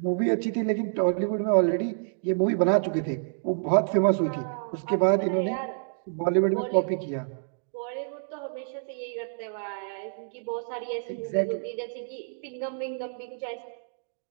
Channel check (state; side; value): silent; left; digital silence